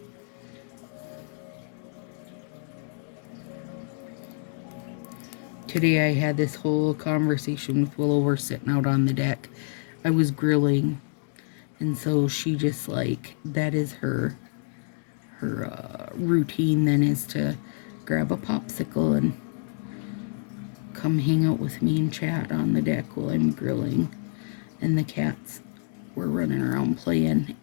Today I had this whole conversation with Willow. We're sitting out on the deck. I was grilling, and so she just like, that is her routine then, is to grab a popsicle and come hang out with me and chat on the deck while I'm grilling. And the cats were running around playing.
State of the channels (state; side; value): silent; right; digital silence